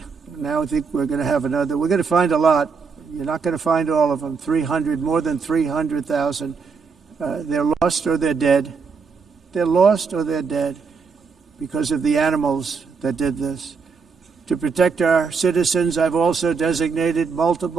Now I think we're going to have another. We're going to find a lot. You're not going to find all of them. 300, more than 300,000. They're lost or they're dead. They're lost or they're dead because of the animals that did this. To protect our citizens, I've also designated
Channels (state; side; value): quieter; left; 5.3 dB